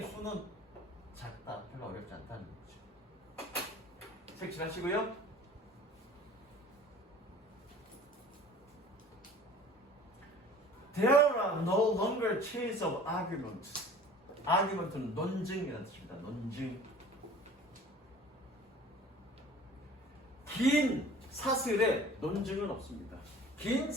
수는 작다. 별로 어렵지 않다는 거죠. 색칠하시고요. There are no longer chains of arguments. argument는 논증이라는 뜻입니다. 논증. 긴 사슬에 논증은 없습니다. 긴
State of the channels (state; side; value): normal; both; correlation 0.46